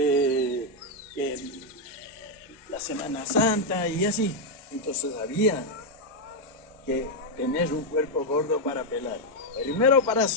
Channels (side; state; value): both; normal; correlation 0.01